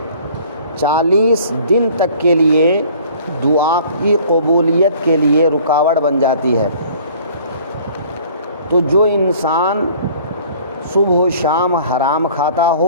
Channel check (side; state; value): both; inverted; correlation -0.51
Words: 40 دن تک کے لیے دعا کی قبولیت کے لیے رکاوٹ بن جاتی ہے۔ تو جو انسان صبح و شام حرام کھاتا